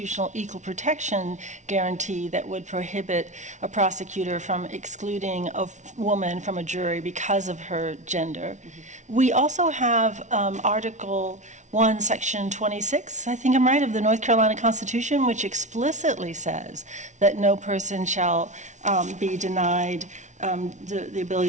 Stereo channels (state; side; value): late; left; 0.35 ms